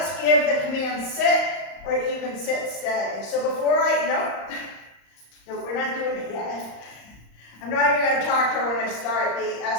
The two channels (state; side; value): late; right; 35 ms